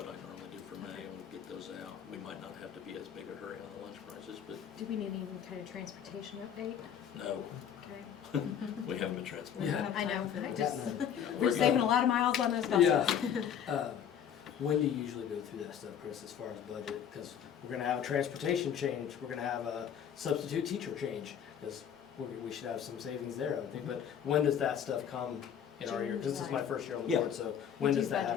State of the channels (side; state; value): right; quieter; 8.7 dB